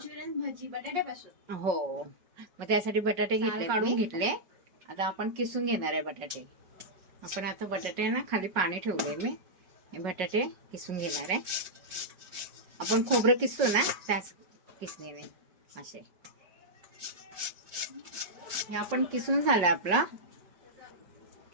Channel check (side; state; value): left; late; 5.5 ms